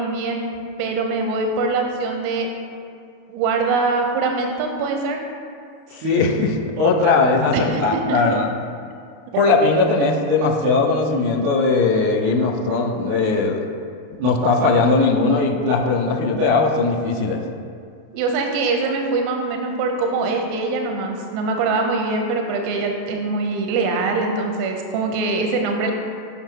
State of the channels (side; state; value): left; late; 33 ms